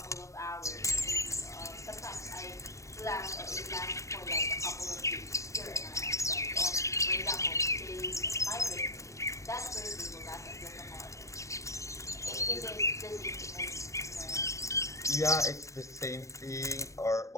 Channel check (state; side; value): late; right; 0.15 ms